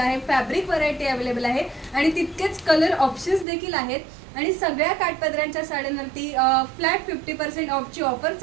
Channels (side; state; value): left; drops out; at 3.5 s